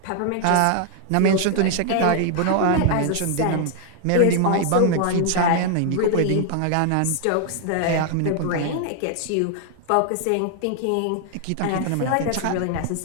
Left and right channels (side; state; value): both; different; correlation 0.00